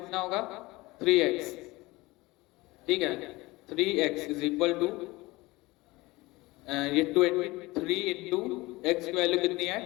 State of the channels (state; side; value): quieter; right; 21.2 dB